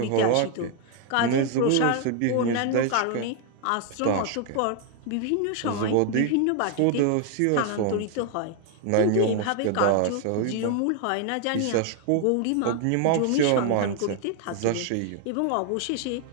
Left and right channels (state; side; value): different; both; correlation 0.00